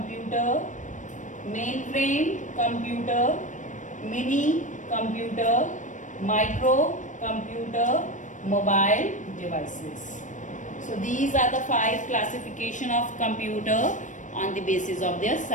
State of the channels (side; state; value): right; late; 0.37 ms